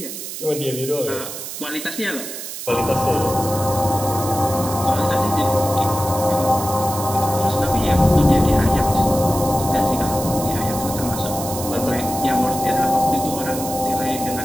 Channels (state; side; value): noise; right; hiss, 8 dB below the sound